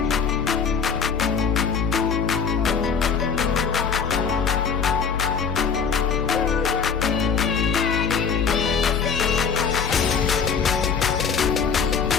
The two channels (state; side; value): quieter; right; 6.3 dB